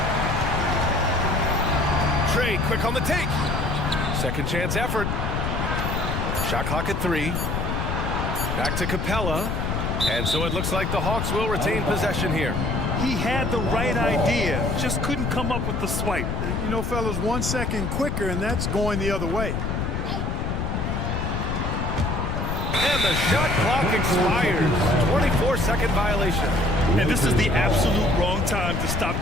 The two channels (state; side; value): noise; left; rumble, 1 dB below the sound